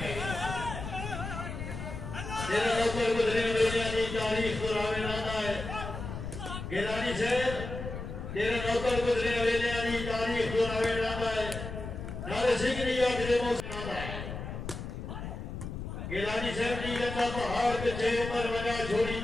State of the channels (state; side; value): noise; left; rumble, 7 dB below the sound